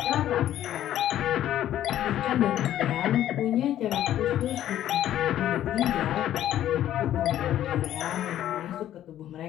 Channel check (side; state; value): right; quieter; 12.0 dB